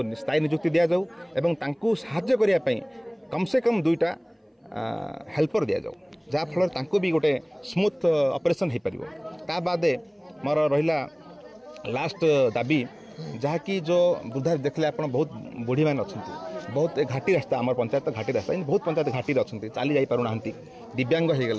स्थायी नियुक्ति दि जाऊ एवं साहाय्य करने कम से कम 2टा हेल्पर दि जाऊ जहाँफल भी गोटे स्मूथ ऑपरेशन हो पार। ता बाद मोर रहा लास्ट दाबी जहाँकि जो वृद्धा देखले आप बहुत बुढ़ी मैंने अच्छा बहुत घाटी रास्ता आम पंचायत घाटी रास्ता बहुत पंचायत घाटी अच्छा चली जा पारना दिव्यांग हो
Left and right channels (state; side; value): identical; both; correlation 1.00